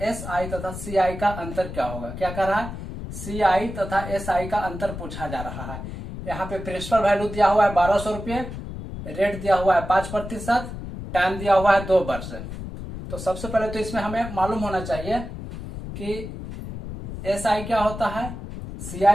SI तथा CI का अंतर क्या होगा। क्या कह रहा है? CI तथा SI का अंतर पूछा जा रहा है। यहाँ पे प्रिंसिपल वैल्यू दिया हुआ है 1200 रुपये, रेट दिया हुआ है 5%, टाइम दिया हुआ है 2 वर्ष। तो सबसे पहले तो इसमें हमें मालूम होना चाहिए कि SI क्या होता है,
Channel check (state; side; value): noise; left; rumble, 9 dB below the sound